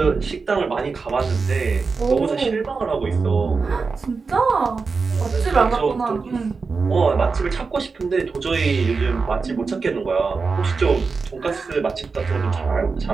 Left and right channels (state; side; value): quieter; left; 4.6 dB